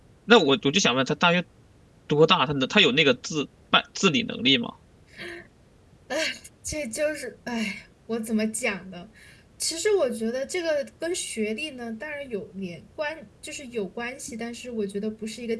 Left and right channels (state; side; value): identical; both; correlation 1.00